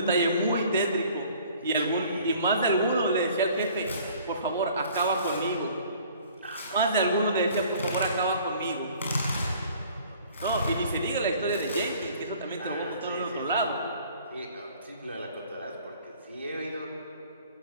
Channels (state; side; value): inverted; both; correlation -0.53